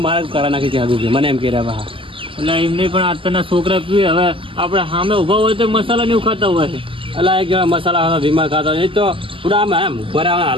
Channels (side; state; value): left; late; 0.25 ms